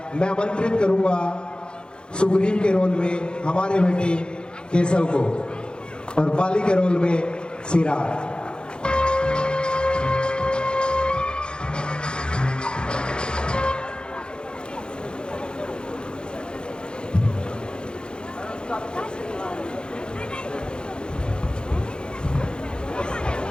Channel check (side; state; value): right; late; 0.050 ms